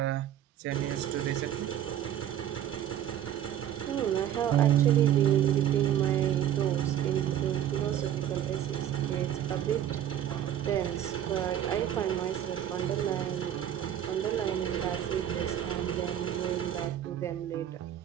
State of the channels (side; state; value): left; quieter; 10.7 dB